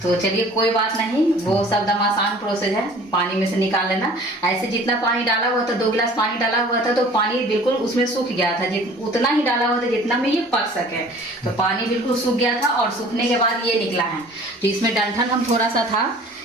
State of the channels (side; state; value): both; normal; correlation 0.49